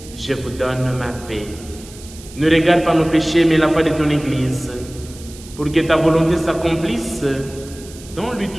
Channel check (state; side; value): noise; right; hiss, 19 dB below the sound